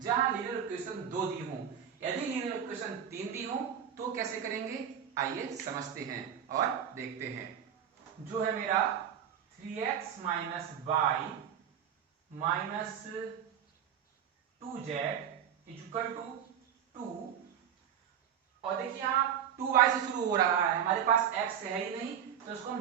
जहां लीनियर इक्वेशन 2 दी हो। यदि लीनियर इक्वेशन 3 दी हो तो कैसे करेंगे, आइए समझते हैं और देखते हैं। जो है मेरा 3x - y - 2z = 2, और देखिए यहां 2y से शुरू हो रहा है, हमारे पास x है ही नहीं तो इसको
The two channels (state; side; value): quieter; left; 9.0 dB